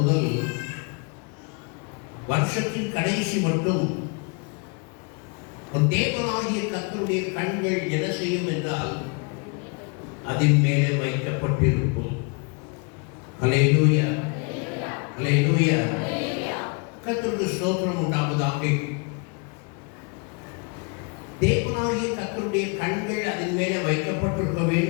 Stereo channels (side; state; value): right; quieter; 33.0 dB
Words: வருஷத்தின் கடைசி மட்டும் ஒரு தேவனாகிய கர்த்தருடைய கண்கள் என்ன செய்யும் என்றால் அதன் மேலே வைக்கப்பட்டிருக்கும். அல்லேலூயா, அல்லேலூயா. கர்த்தருக்கு ஸ்தோத்திரம் உண்டாவதாக. தேவனாகிய கர்த்தருடைய கண்கள் அதன் மேலே வைக்கப்பட்டிருக்க